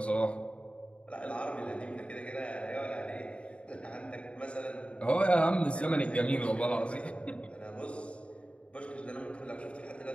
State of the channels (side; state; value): right; late; 0.060 ms